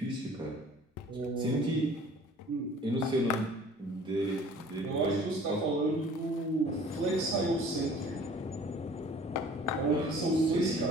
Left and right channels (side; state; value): both; normal; correlation 0.50